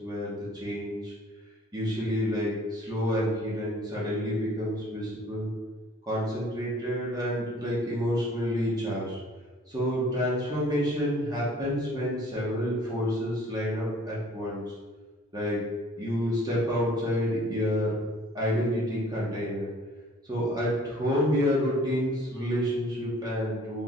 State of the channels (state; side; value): normal; both; correlation 0.54